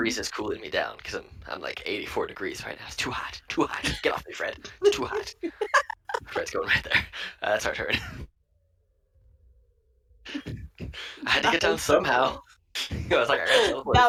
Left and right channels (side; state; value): both; identical; correlation 1.00